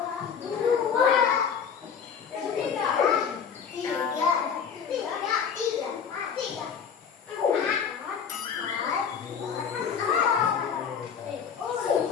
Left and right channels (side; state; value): right; quieter; 7.0 dB